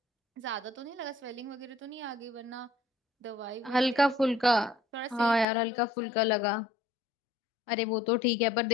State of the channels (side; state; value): right; drops out; at 5.5 s